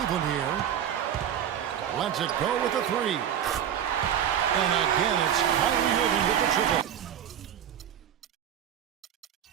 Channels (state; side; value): quieter; left; 9.6 dB